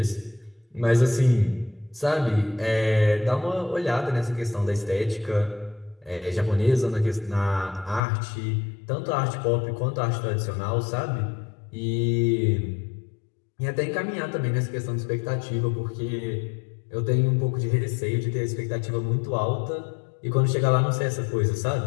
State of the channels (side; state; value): right; drops out; at 8.0 s